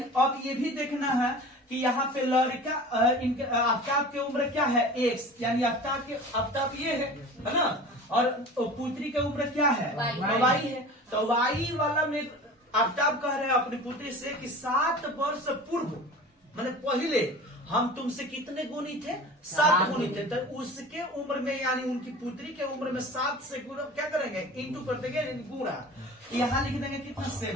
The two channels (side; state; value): both; normal; correlation 0.38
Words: अब ये भी देखना है कि यहाँ पे लड़का आफ्ताब की उम्र क्या है? x, यानी आफ्ताब ये है ना, और पुत्री की उम्र क्या है? y है। तो y वाला में आफ्ताब कह रहे हैं अपनी पुत्री से कि 7 वर्ष पूर्व, मैंने पहले हम तुमसे कितने गुनी थे? 7 गुनी थे। तो उसके उम्र में, यानी उनकी पुत्री के उम्र में 7 से गुना क्या करेंगे? इंटू कर देंगे, गुणा। यहाँ लिख देंगे कितना